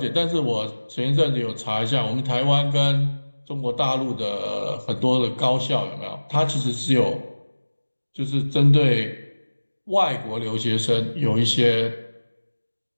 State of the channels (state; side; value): inverted; both; correlation -1.00